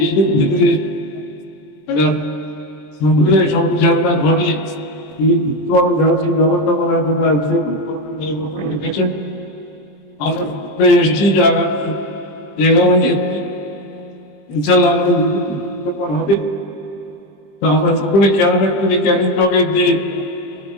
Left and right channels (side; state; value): right; late; 20 ms